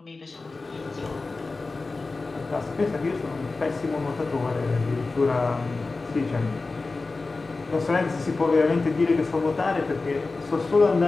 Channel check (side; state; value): right; quieter; 3.7 dB